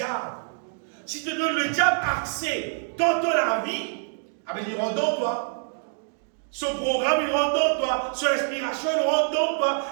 Si tu donnes le diable accès dans la vie, il rentre dans toi. Son programme, il rentre dans toi. Son inspiration, il rentre dans toi.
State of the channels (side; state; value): left; silent; digital silence